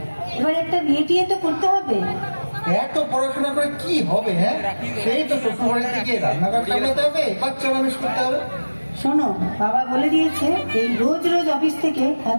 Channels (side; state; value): both; inverted; correlation -1.00